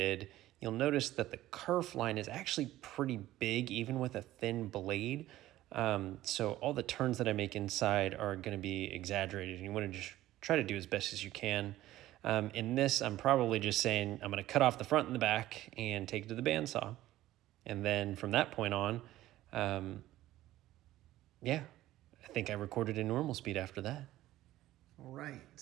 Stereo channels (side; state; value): left; quieter; 15.1 dB